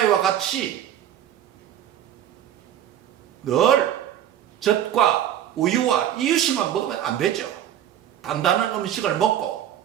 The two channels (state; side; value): quieter; left; 10.7 dB